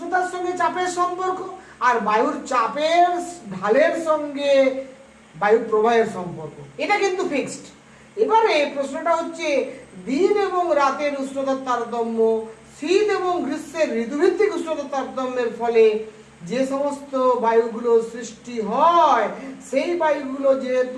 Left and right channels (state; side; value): identical; both; correlation 1.00